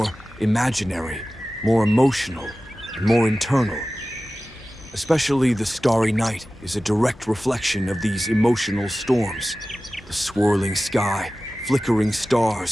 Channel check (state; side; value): normal; both; correlation 0.96